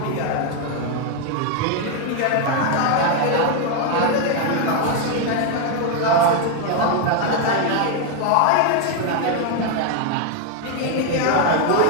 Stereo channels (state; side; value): different; both; correlation 0.01